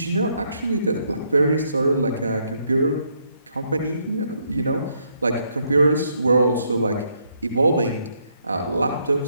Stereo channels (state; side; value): inverted; both; correlation -0.73